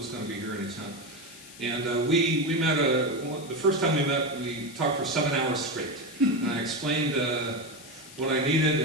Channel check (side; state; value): left; noise; hiss, 18 dB below the sound